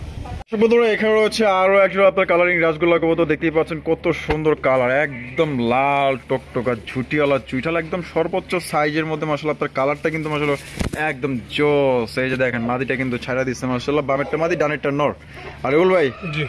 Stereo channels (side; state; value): both; identical; correlation 1.00